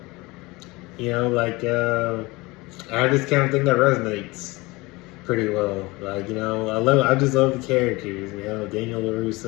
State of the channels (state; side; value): quieter; right; 22.8 dB